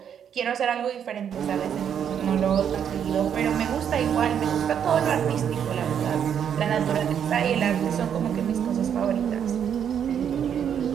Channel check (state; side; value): quieter; left; 8.5 dB